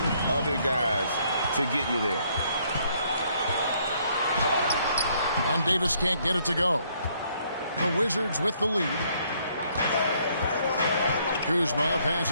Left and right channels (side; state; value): both; inverted; correlation -0.68